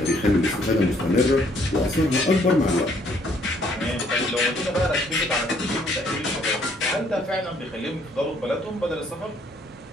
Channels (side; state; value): both; normal; correlation 0.65